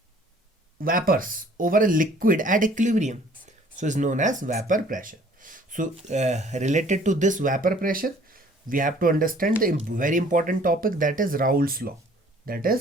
vapors over a liquid at equilibrium, so is known as vapor pressure. So related to this vapor pressure, we have to understand the very important topic, that is Raouls law. That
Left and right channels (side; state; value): both; normal; correlation 0.55